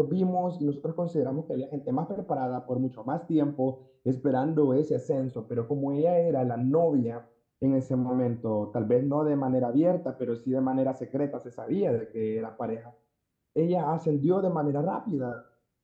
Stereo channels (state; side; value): identical; both; correlation 1.00